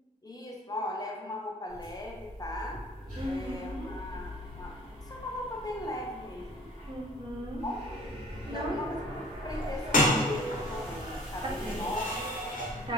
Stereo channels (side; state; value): both; normal; correlation 0.49